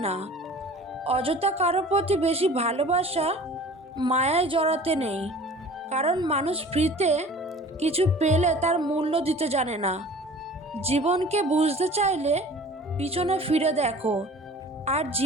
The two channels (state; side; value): normal; both; correlation 0.44